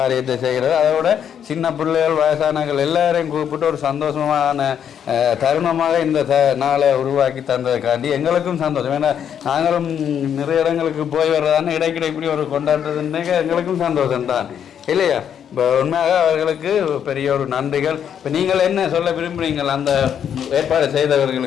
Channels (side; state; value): right; quieter; 8.7 dB